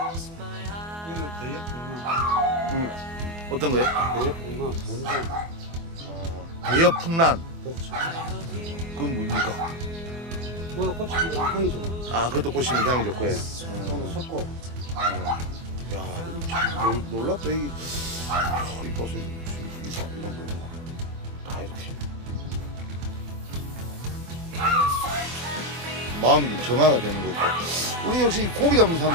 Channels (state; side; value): late; left; 24 ms